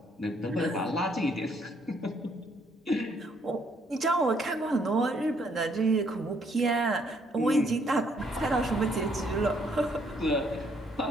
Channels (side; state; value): both; normal; correlation 0.68